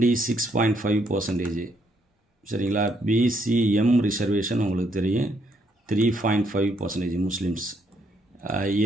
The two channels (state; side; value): normal; both; correlation 0.72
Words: சரிங்களா? பிசிஎம் ரிசர்வேஷன் உங்களுக்கு தெரியும், 3.5% முஸ்லீம்ஸ்.